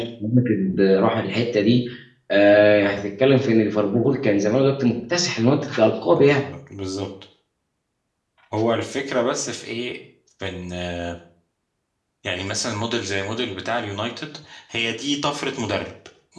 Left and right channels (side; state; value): both; identical; correlation 1.00